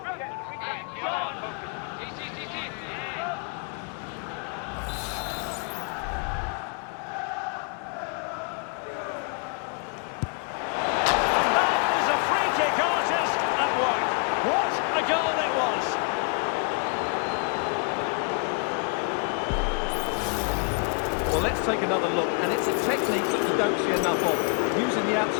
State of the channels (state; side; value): quieter; right; 37.8 dB